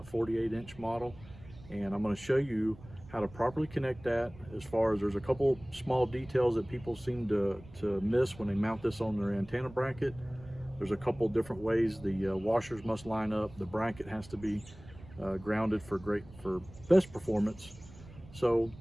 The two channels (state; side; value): noise; right; rumble, 19 dB below the sound